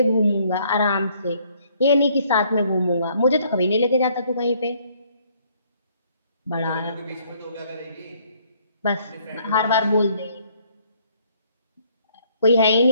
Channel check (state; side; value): inverted; both; correlation -0.64